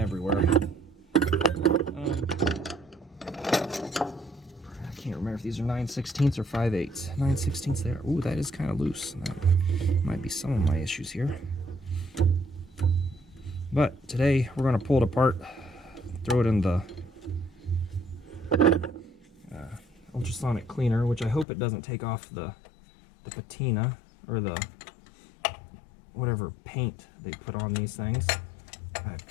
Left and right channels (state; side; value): drops out; right; at 21.5 s